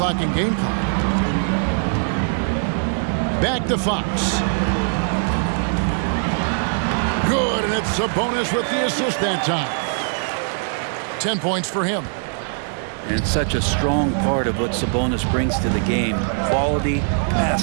and game clock. Back to Fox. Good, and it's Sabonis with the assist that time. 10 points for him. And it's such a strong part of what Sabonis brings to the game. Quality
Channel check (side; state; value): left; silent; 60 dB below the other